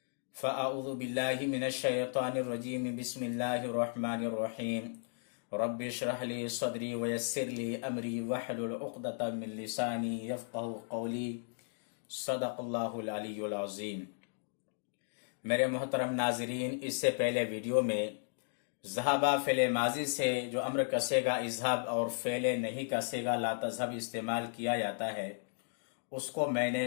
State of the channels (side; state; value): right; silent; digital silence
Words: फ़अऊज़ु बिल्लाहि मिनश्शैतानिर्रजीम बिस्मिल्लाहिर्रहमानिर्रहीम रब्बि इश्रह ली सदरी वयस्सिर ली अमरी वहलुल उक़दतम मिन लिसानी यफ़क़हू क़ौली सदक़ल्लाहुल अलीयुल अज़ीम। मेरे मोहतरम नाज़रीन, इससे पहले वीडियो में ज़हाबा फ़ेले माजी से जो अम्र कसेगा इज़हाब और फ़ेले नहीं कसेगा ला तज़हब इस्तेमाल किया जाता है उसको